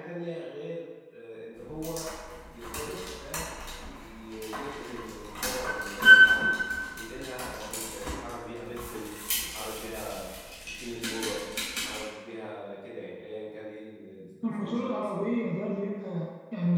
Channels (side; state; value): both; identical; correlation 1.00